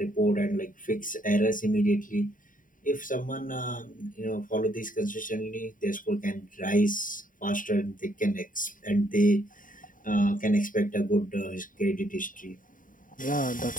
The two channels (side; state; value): right; late; 0.39 ms